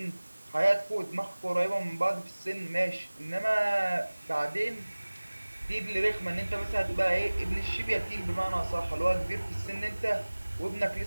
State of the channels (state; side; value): inverted; both; correlation -1.00